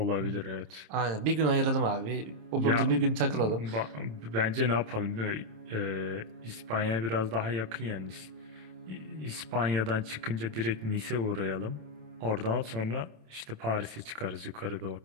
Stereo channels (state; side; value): late; left; 26 ms